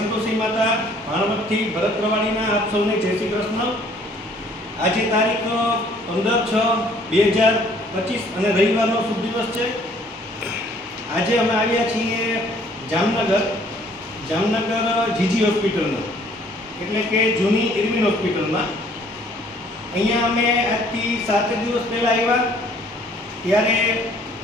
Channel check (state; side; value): normal; both; correlation 0.59